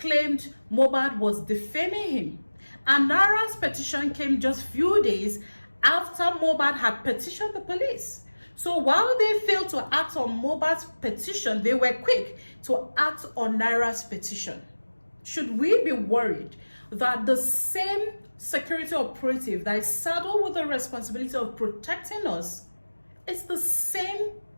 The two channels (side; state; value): both; inverted; correlation -1.00